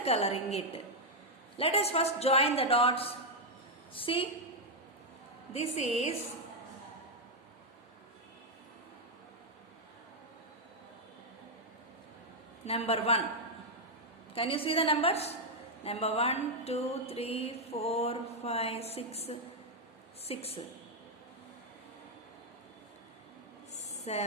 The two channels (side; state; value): both; normal; correlation 0.00